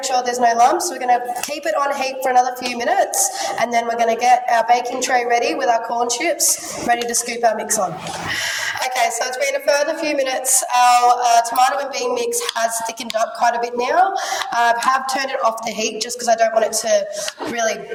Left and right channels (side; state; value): both; identical; correlation 1.00